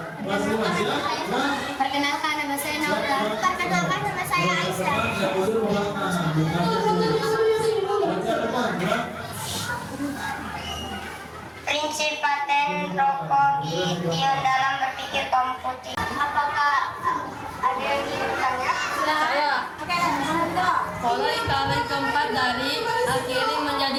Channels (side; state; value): both; identical; correlation 1.00